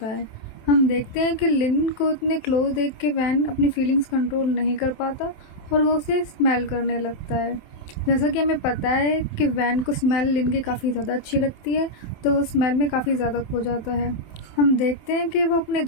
है। हम देखते हैं कि लिन को इतने क्लोज देख के वैन अपनी फीलिंग्स कंट्रोल नहीं कर पाता और वो उसे स्मेल करने लगता है। जैसा कि हमें पता है कि वैन को स्मेल लिन की काफ़ी ज़्यादा अच्छी लगती है, तो वो स्मेल में काफ़ी ज़्यादा खो जाता है। हम देखते हैं कि वो अपने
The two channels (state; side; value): late; right; 27 ms